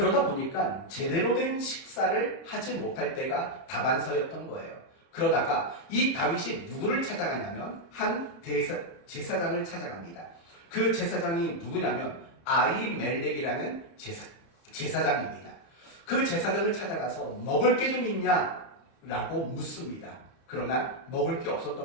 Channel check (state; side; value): late; right; 30 ms